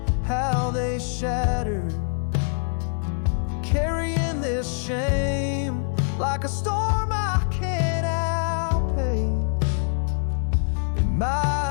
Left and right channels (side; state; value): right; silent; digital silence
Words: how they shattered. Carrying this shame like a storm I can't outpace. In